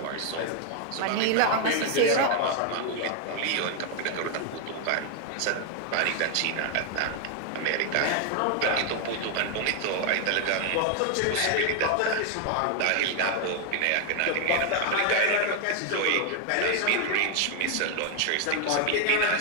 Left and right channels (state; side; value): different; both; correlation 0.01